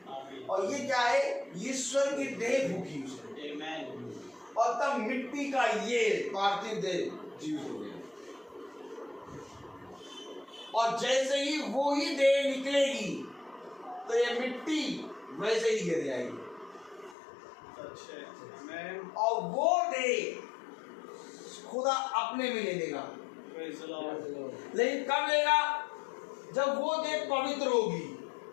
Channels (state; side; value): drops out; right; at 17.2 s